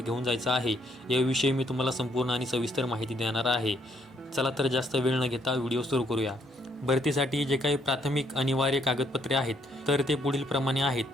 घेऊन जायचं आहे याविषयी मी तुम्हाला संपूर्ण आणि सविस्तर माहिती देणार आहे. चला तर जास्त वेळ न घेता व्हिडिओ सुरू करूया. भरतीसाठी जे काही प्राथमिक अनिवार्य कागदपत्रे आहेत तर ते पुढील प्रमाणे आहेत.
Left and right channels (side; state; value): both; normal; correlation 0.70